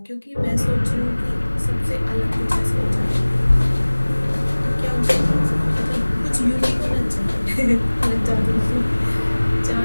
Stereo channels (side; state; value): both; inverted; correlation -1.00